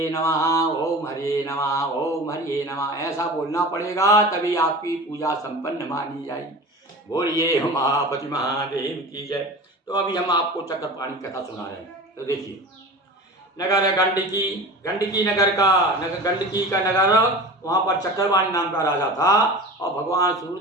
नमः, ओम हरिये नमः, ओम हरिये नमः ऐसा बोलना पड़ेगा, तभी आपकी पूजा संपन्न मानी जाएगी। बोलिए उमापति महादेव की जय। तो अभी हम आपको चक्रपाणी कथा सुना रहे हैं। तो देखिए नगर गंडकी गंडकी का नगर, वहाँ पर चक्रपाणी नाम का राजा था और भगवान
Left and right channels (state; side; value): normal; both; correlation 0.35